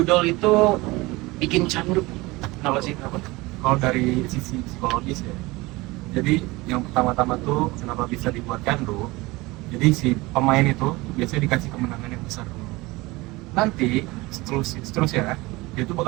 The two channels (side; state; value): left; quieter; 22.0 dB